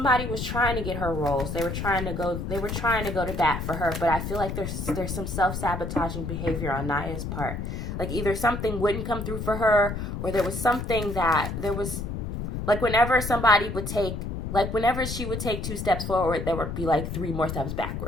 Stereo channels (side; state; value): left; noise; rumble, 5 dB below the sound